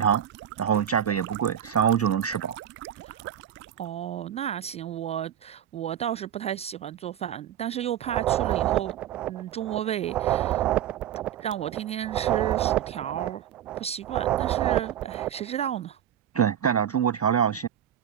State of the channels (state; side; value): quieter; left; 9.9 dB